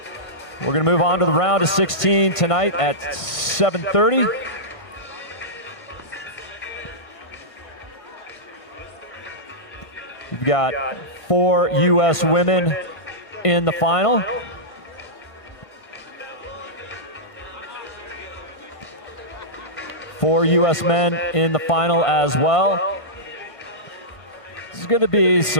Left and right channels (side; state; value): right; late; 1.5 ms